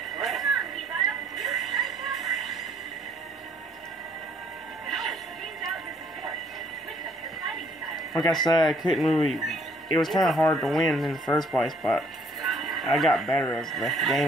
crap. Like I said, I couldn't really... It was kind of hard to win in the first place, but I got better as the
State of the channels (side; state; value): both; normal; correlation 0.63